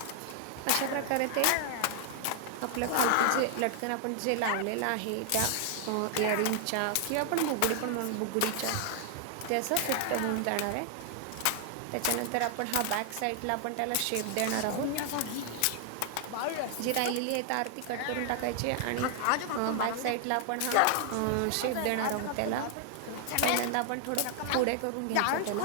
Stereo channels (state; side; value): different; both; correlation 0.00